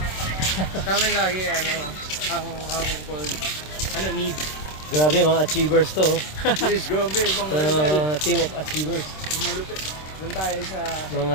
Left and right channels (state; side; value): late; right; 26 ms